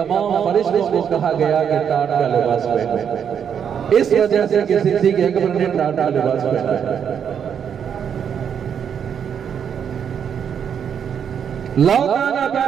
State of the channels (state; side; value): quieter; left; 7.9 dB